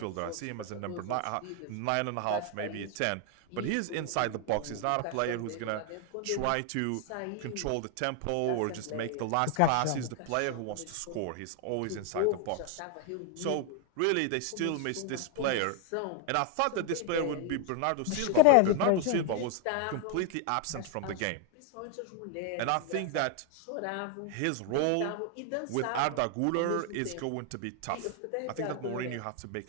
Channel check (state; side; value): different; both; correlation 0.01